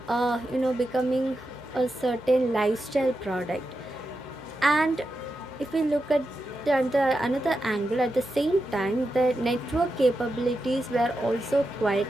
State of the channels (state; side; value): noise; right; hum, 25 dB below the sound